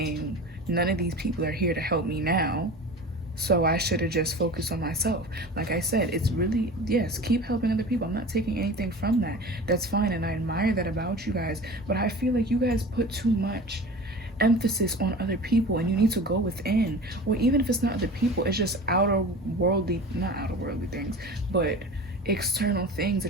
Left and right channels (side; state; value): both; normal; correlation 0.37